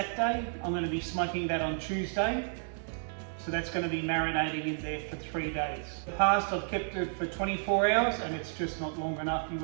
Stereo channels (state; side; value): silent; left; 57 dB below the other